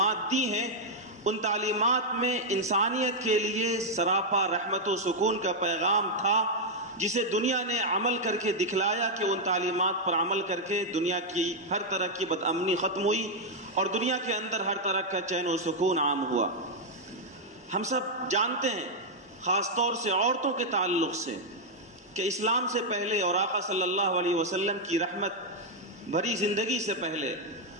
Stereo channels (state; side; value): normal; both; correlation -0.02